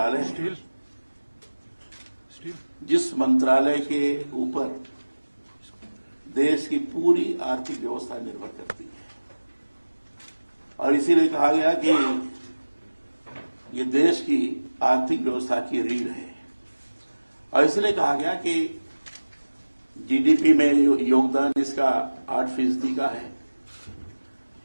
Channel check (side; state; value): both; inverted; correlation -1.00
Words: है जिस मंत्रालय के ऊपर देश की पूरी आर्थिक व्यवस्था निर्भर करती है और इसीलिए कहा गया कि ये देश की आर्थिक व्यवस्था की रीढ़ है और इसलिए कहा गया कि जीडीपी में योगदान इसका 8% का है,